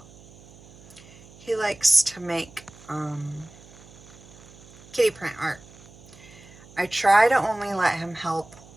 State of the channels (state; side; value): noise; right; hum, 22 dB below the sound